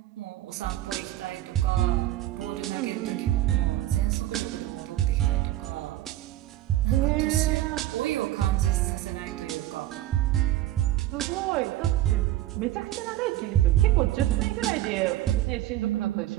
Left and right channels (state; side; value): quieter; left; 14.2 dB